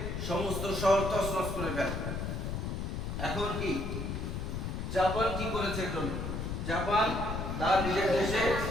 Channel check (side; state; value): left; noise; rumble, 3 dB below the sound